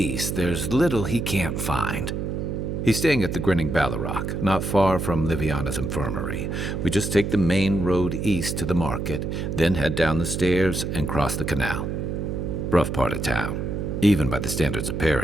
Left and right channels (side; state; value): right; noise; hum, 3 dB below the sound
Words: there's little he can't find. He's staying at the Grinning Ballarrock, not far from Liviana's infirmary. We just take the main road east to the market, then head down the stairs and cross the canal. Rough part of town, even by the standards of